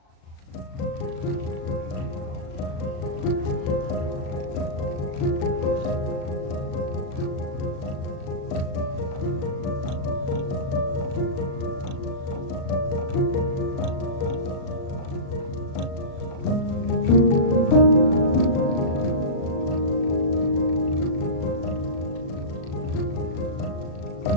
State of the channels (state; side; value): late; right; 37 ms